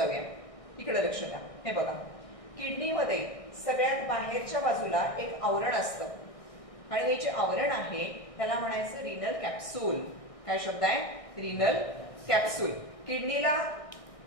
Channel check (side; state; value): right; late; 1.6 ms